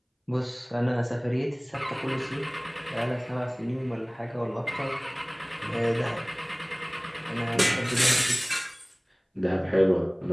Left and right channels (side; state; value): both; identical; correlation 1.00